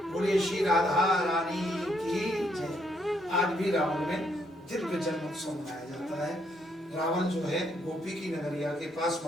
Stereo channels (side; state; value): both; normal; correlation 0.73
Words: बोले श्री राधा रानी की जय। आज भी रावण में दिव्य जन्मोत्सव मनाया जाता है। रावण जो है गोपी की नगरिया के पास